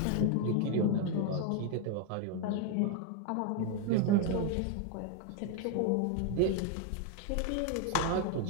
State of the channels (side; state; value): both; different; correlation 0.01